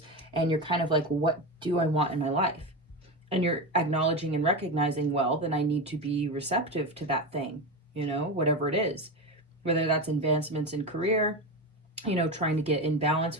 And you're kind of like, what do I want in my life? And you're acknowledging and recognizing, well, then I need to be receptive to that thing, you know, whatever it is. Whether that's advancements in career, you know, trying to get in balance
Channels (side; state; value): both; normal; correlation 0.19